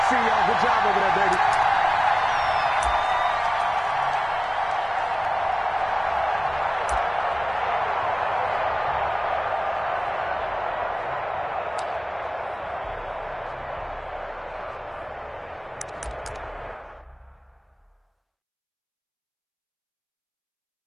see y'all. Good job over there, baby.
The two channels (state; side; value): identical; both; correlation 1.00